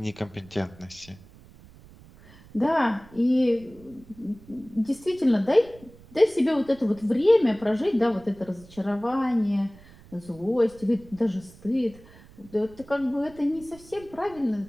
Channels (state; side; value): noise; right; rumble, 22 dB below the sound